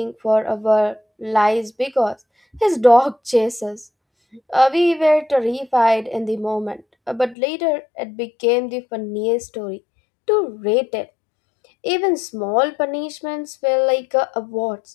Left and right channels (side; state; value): right; drops out; at 7.4 s